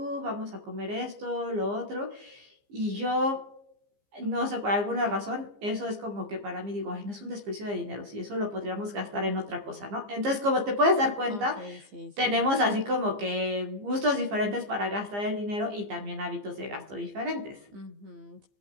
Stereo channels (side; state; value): left; late; 15 ms